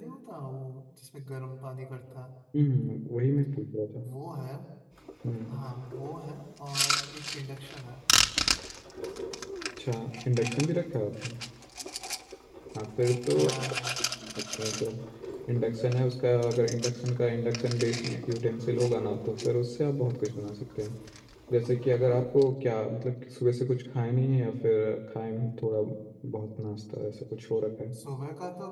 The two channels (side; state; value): both; identical; correlation 1.00